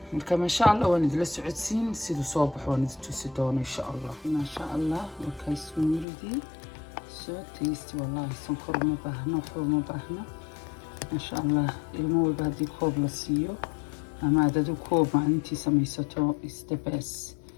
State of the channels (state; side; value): drops out; right; at 6.1 s